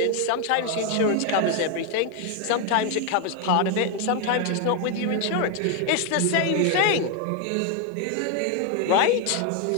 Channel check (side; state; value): both; different; correlation 0.01